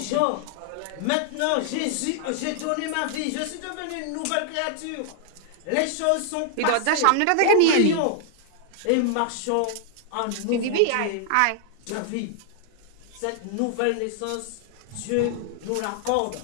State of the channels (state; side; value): different; both; correlation 0.00